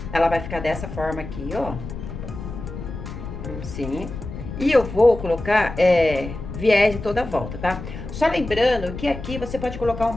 Ela vai ficar dessa forma aqui, ó. Assim. E eu vou colocar viés em toda a volta, tá? Só lembrando que aqui você pode colocar um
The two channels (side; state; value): left; noise; rumble, 9 dB below the sound